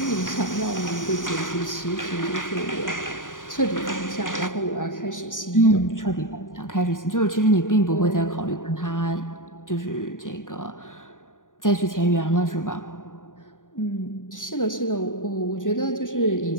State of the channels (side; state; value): right; late; 0.88 ms